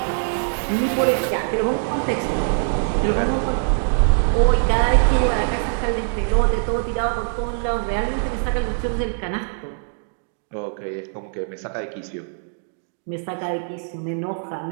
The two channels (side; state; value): left; silent; digital silence